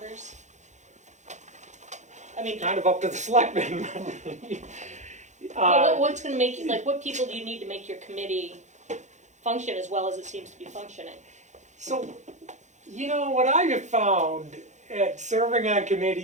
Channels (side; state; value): left; late; 0.34 ms